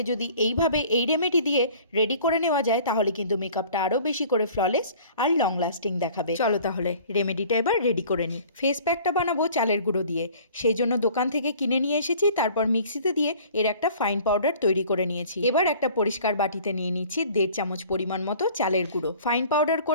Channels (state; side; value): inverted; both; correlation -0.49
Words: যদি এইভাবে এই রেমেডি দিয়ে রেডি করে নেওয়া যায় তাহলে কিন্তু মেকআপটা আরও বেশি করে ফ্ললেস আর লং লাস্টিং দেখাবে। চলো তাহলে রেমেডিটা এবার রেডি করে নিই। ফেস প্যাকটা বানাবো চালের গুঁড়ো দিয়ে, সেই জন্য দোকান থেকে কিনে নিয়ে এসেছি। তারপর মিক্সিতে দিয়ে এর একটা ফাইন পাউডার তৈরি করে নিয়েছি। এবার একটা পরিষ্কার বাটিতে নিয়ে নিচ্ছি 1.5 চামচ পরিমাণ মতো চালের গুঁড়ো। ফাইন পাউডার